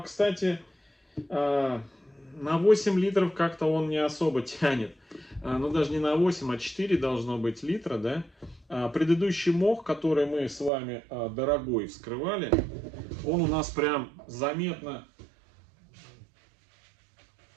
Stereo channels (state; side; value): drops out; left; at 10.7 s